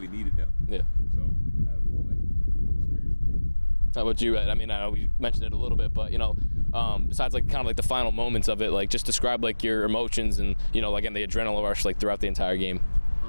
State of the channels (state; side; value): inverted; both; correlation -1.00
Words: needed them. Yeah. So that was like a cool experience for me. How about you, Ed? I mean, I know we mentioned it a little bit, but besides like kind of like the final moments of it, like just describe like your emotions and again the adrenaline rush like throughout the entire game.